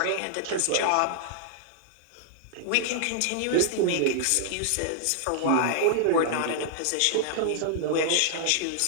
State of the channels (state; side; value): different; both; correlation -0.01